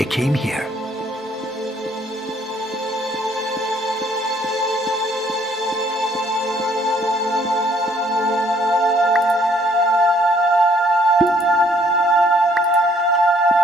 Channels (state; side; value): normal; both; correlation 0.63